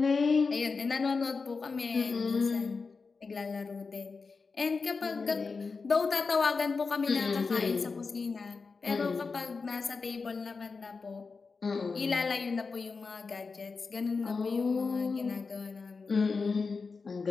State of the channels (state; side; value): quieter; right; 4.5 dB